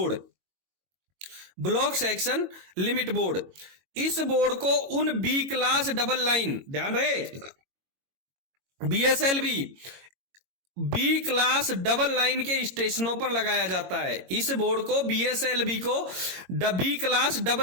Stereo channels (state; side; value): late; left; 22 ms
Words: block section limit board, इस बोर्ड को उन बी क्लास डबल लाइन, ध्यान रहे, बीएसएलबी बी क्लास डबल लाइन के स्टेशनों पर लगाया जाता है। इस बोर्ड को, बीएसएलबी को बी क्लास